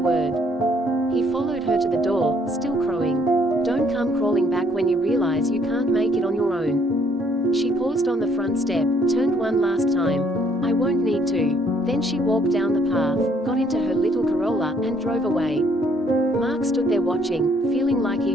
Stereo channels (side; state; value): both; normal; correlation 0.66